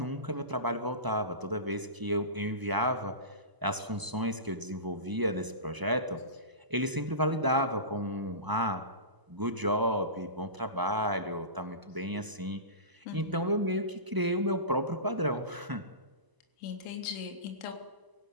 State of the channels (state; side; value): late; left; 1.0 ms